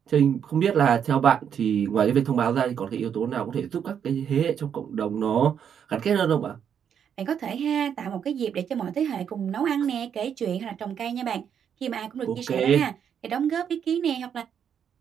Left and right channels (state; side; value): quieter; left; 8.2 dB